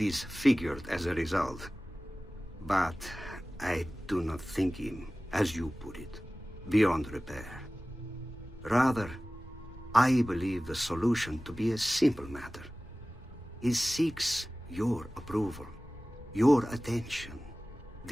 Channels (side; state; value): both; normal; correlation 0.97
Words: as a result. But I do not think him, as you put it, beyond repair. Rather, I believe the solution to be a simple matter. He seeks your approval, your attention.